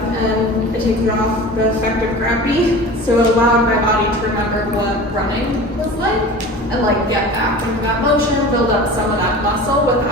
and it takes off the effect of gravity. So it allowed my body to remember what running was like and get back into that motion, build up some of that muscle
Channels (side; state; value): both; normal; correlation 0.36